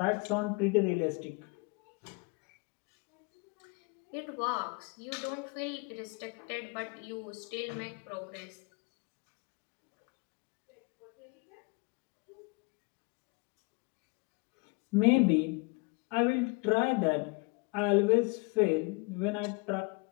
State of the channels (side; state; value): right; quieter; 29.8 dB